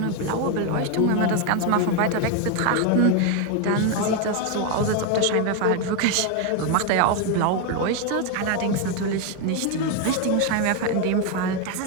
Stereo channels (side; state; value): both; different; correlation 0.01